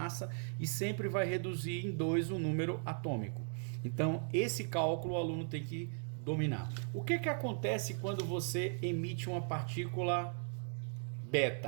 e sempre vai reduzir em 2 o número atômico. Então, esse cálculo o aluno tem que dominar. O que acontece quando você emite uma partícula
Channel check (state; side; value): silent; left; 53 dB below the other